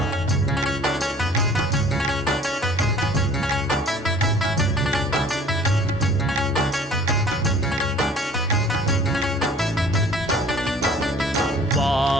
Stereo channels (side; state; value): both; normal; correlation 0.51